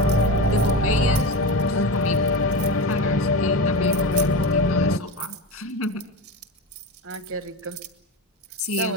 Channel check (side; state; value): both; normal; correlation 0.22